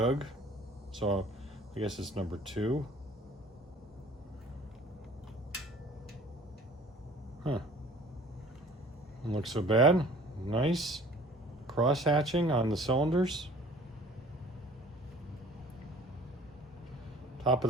So I guess it's number 2. Huh. Doesn't look so bad. Nice cross hatching on the cylinders. Top of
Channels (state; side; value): normal; both; correlation 0.49